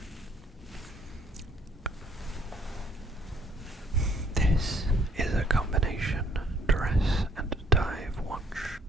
This is a combination dress and dive watch.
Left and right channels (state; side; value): normal; both; correlation 0.63